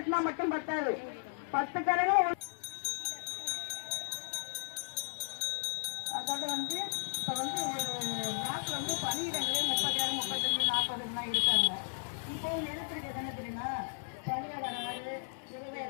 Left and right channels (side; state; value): right; silent; 54 dB below the other